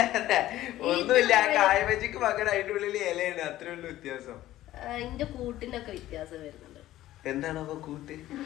ഒന്നുമില്ല. കായ് ബജിക്ക് പകരം അതിന്റെ ഉള്ളിൽ ഇലയാണ്, അത്രേ ഉള്ളൂ വ്യത്യാസം. അതിന്റെ കൂട്ടിന്റെ ഒക്കെ വ്യത്യാസം വരുന്നുണ്ട്. എന്താണ് അപ്പൊ കൂട്ട്?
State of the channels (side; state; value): right; quieter; 14.6 dB